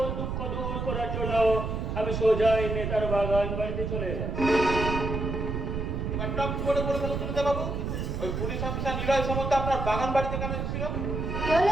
দুঃখ দূর করার জন্য আমি সোজাই নেতার বাগান বাড়িতে চলে এলাম। বাবু, ওই পুলিশ অফিসার নিলয় সামন্ত আপনার বাগান বাড়িতে কেন এসেছিল?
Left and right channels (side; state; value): right; noise; rumble, 2 dB below the sound